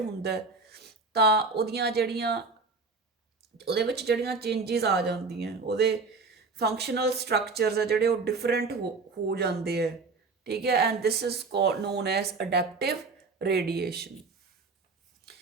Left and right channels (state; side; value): quieter; left; 4.2 dB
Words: ਤਾਂ ਉਹਦੇ ਵਿੱਚ ਜਿਹੜੀਆਂ ਚੇਂਜਿਸ ਆ ਜਾਂਦੀਆਂ, ਉਹਦੇ ਫੰਕਸ਼ਨਲ ਸਟਰਕਚਰਸ ਆ ਜਿਹੜੇ ਉਹ ਡਿਫਰੈਂਟ ਹੋ ਜਾਂਦੇ ਹੈ। ਠੀਕ ਹੈ, and this is known as adaptive radiation.